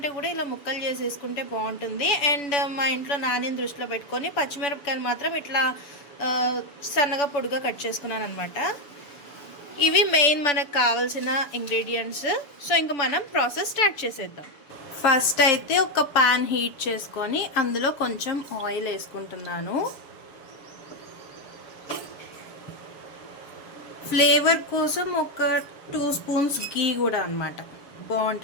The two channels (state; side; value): late; right; 7.0 ms